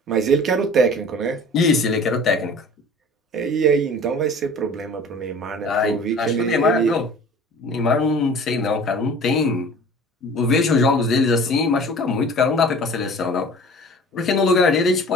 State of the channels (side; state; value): both; normal; correlation 0.44